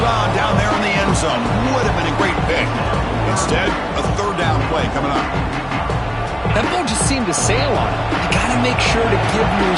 on down there in the end zone. Would have been a great pick. Instead, a third down play coming up. That ball just seemed to sail on him. You got to make sure to give your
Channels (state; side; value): identical; both; correlation 1.00